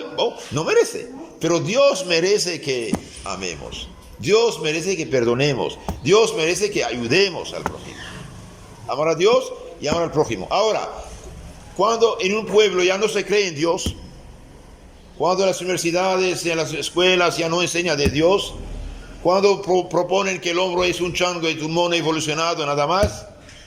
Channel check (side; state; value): both; identical; correlation 1.00